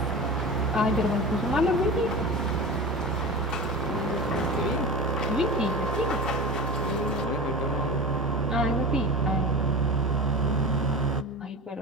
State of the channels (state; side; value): normal; both; correlation 0.30